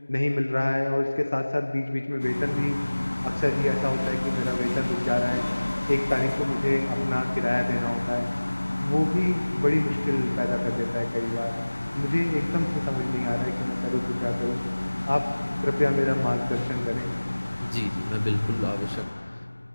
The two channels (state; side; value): inverted; both; correlation -1.00